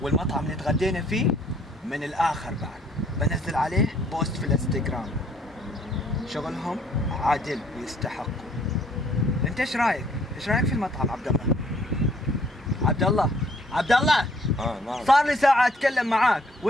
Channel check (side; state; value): both; normal; correlation 0.63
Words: والمطعم اللي تغدينا فيه من الآخر بعد. بنزل عليه بوست في الانستغرام. شغلهم عادل ويستحقوا. انت ايش رايك؟ ايش رايك في المطعم عبد الله؟ عبد الله عبد الله نعم. صار لي ساعة اتكلم معاك